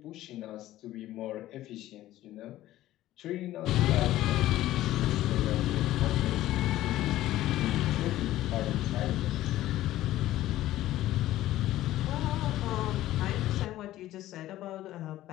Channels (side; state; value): right; quieter; 14.7 dB